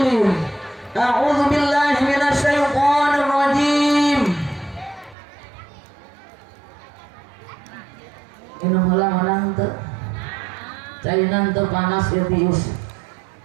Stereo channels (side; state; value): left; drops out; at 5.2 s